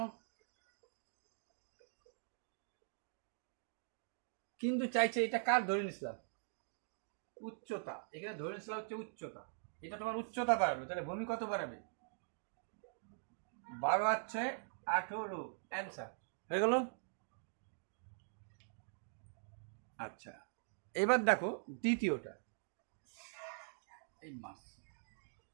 কিন্তু চাইছে এটা কার ধরে নিছিলাম? উচ্চতা। এখানে ধরে নিছিলাম হচ্ছে উচ্চতা। এটা তোমার উচ্চতা বাড়ালো, তাহলে ভূমি কত বাড়াবে? 12 আর 6 18 অ্যান্সার হয়ে গেল। আচ্ছা, এবার দেখো দ্বিতীয়টা। এই মাস,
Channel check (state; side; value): silent; left; digital silence